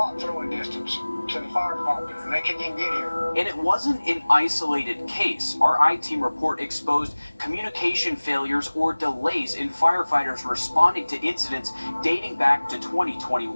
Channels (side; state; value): both; inverted; correlation -1.00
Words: throwing distance. to the fire department, and they couldn't even get here. And it wasn't an isolated case. Our I-Team report exposed communication failures or delays in firefighters responding to incidents dating back to